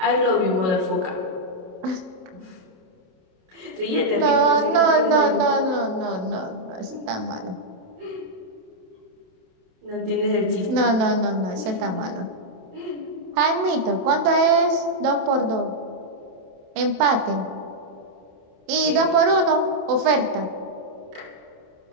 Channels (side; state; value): left; late; 27 ms